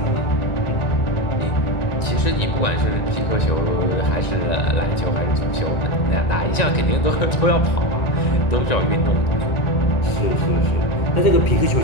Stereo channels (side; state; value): right; late; 1.9 ms